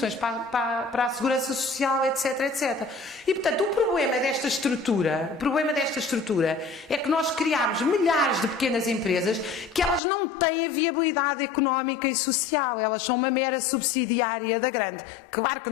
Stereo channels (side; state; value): right; drops out; at 10.0 s